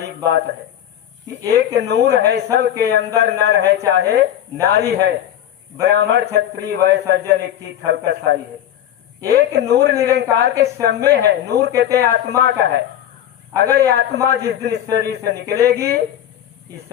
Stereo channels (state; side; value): quieter; right; 11.0 dB